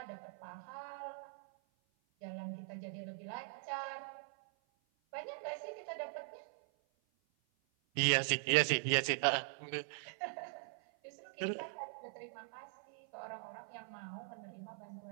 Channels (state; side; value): silent; left; 50 dB below the other